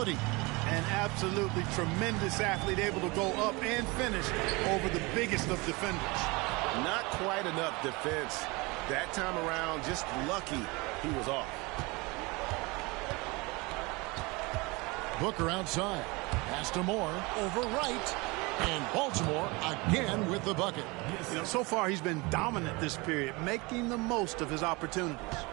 An absolutely tremendous athlete, able to go up and finish over the biggest of defenders. Not quite enough defense that time around. Just lucky he was off. Booker outside. Pass to Moore. Over right. And Baltimore again with the bucket. You know, so far he's been dominant this period, making the most of his opportunities.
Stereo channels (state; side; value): quieter; left; 25.5 dB